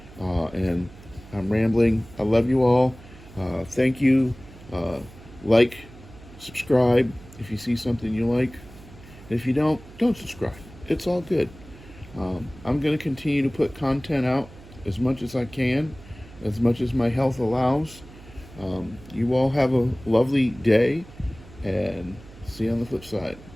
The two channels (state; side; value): noise; right; hum, 20 dB below the sound